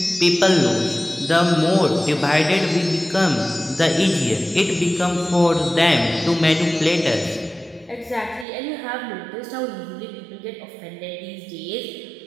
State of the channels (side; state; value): left; drops out; at 8.5 s